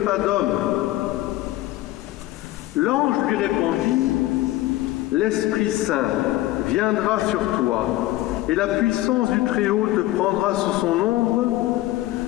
d'homme ?» L'ange lui répondit : « L'Esprit Saint viendra sur toi, et la puissance du Très-Haut te prendra sous son ombre.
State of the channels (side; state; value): right; quieter; 16.6 dB